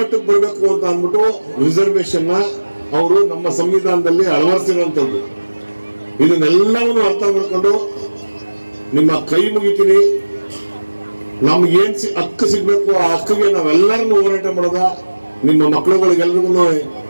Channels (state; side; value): inverted; both; correlation -1.00